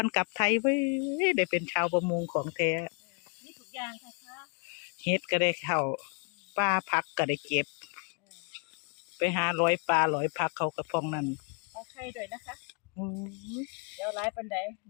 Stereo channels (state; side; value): quieter; right; 38.1 dB